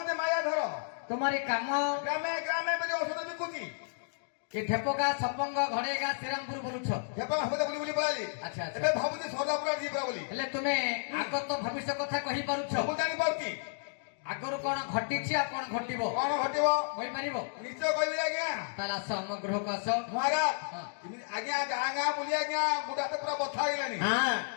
ମାୟାଧର। ତୁମରି କାମ ଗ୍ରାମେ ଗ୍ରାମେ ବୋଲି ଔଷଧ ବିକୁଛି। କି ଢେପକା ସପଙ୍ଗ ଘଡେଗା ଶ୍ରୀରାମପୁର ବୁଲୁଛ? ହେବା ହବ ବୁଲି ବୁଲି ପଳାଲି। ଆଚ୍ଛା, ଆଚ୍ଛା। ଏବେ ଭାବୁଛି ସଦାପୁରା ଯିବା ବୋଲି। ହେଲେ ତୁମେ ଆଗତ ଭବିଷ୍ୟ କଥା କହିପାରୁଛ? ସବୁ ଜାଣିପାରୁଛି ଆଗରୁ କଣ ଘଟିଛି ଆଉ କଣ ଘଟିବ କଣ ଘଟିବ କହିପାରିବ? ନିଶ୍ଚୟ କହିବି ଆଜ୍ଞା। ତାହେଲେ ଆସ ଆମ ଗୃହକୁ ଆସ। ମହାରାଜ ହଁ। ଏମିତି ଆଜ୍ଞା ଗାଁ ଗାଁ ବୁଲି ଆଜ୍ଞା ଗୋଟା ହାତ ପୁରା ବଥା ହେଇଗଲାଣି।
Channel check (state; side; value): silent; right; digital silence